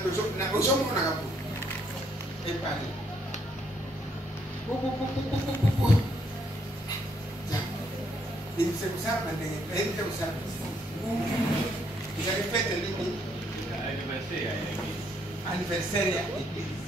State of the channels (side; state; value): both; normal; correlation 0.71